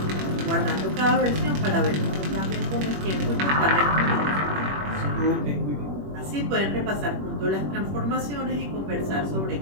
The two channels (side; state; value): left; late; 21 ms